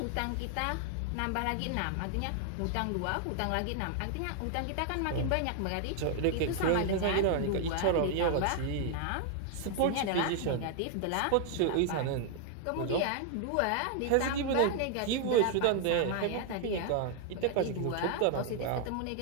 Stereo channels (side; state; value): both; different; correlation 0.00